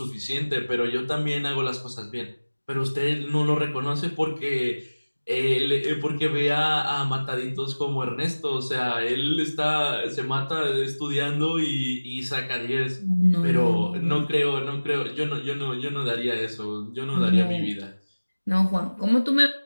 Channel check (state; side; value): inverted; both; correlation -1.00